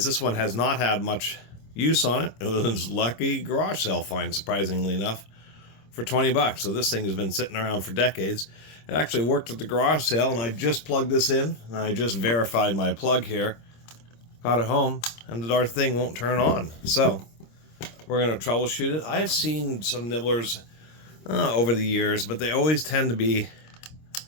This one has not had much use on it. It was lucky garage sale find, surprisingly enough, for 20 bucks. So this thing has been sitting around for decades. It actually worked at the garage sale, and I just plugged this in, and I just verified my plug here. Got it home, and the darn thing won't turn on. So we're going to troubleshoot it. I've seen some nibblers over the years, but they always tend to be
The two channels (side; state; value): right; late; 26 ms